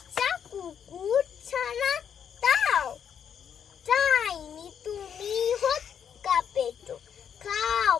কুকুর ছানা তাও, চাইনি তুমি হৎকা পেটো, খাও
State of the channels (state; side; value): quieter; right; 8.1 dB